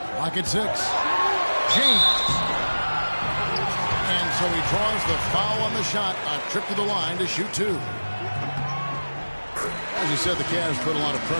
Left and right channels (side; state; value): both; inverted; correlation -1.00